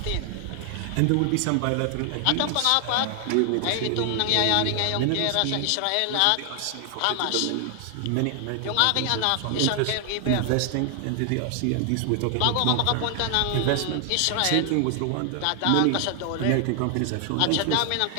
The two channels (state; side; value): different; both; correlation 0.00